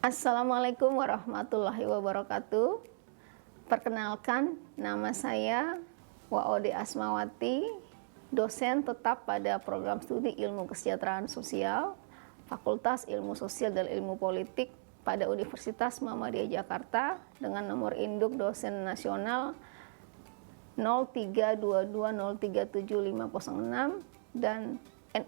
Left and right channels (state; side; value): silent; left; digital silence